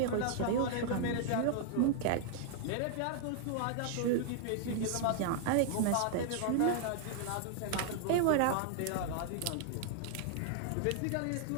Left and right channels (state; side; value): different; both; correlation 0.00